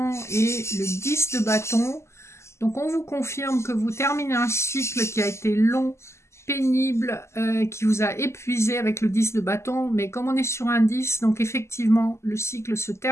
et le 10 de bâton. Donc on vous confirme que vous terminez un cycle qui a été long, pénible, qui vous a épuisé avec le 10 de bâton. Mais comme on est sur un 10, donc effectivement, le cycle se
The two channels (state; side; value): late; right; 0.13 ms